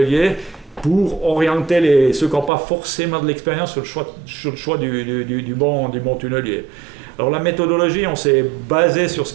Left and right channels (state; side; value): drops out; left; at 2.5 s